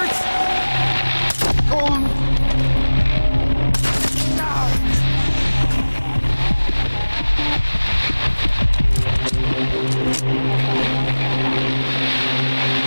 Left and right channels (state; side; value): inverted; both; correlation -1.00